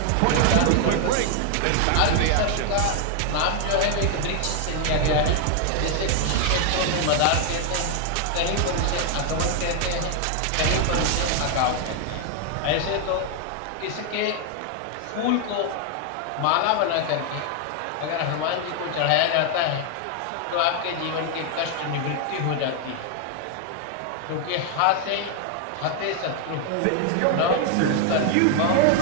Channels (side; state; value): both; different; correlation 0.00